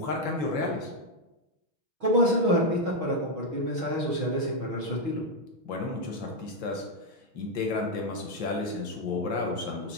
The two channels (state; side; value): late; left; 6.3 ms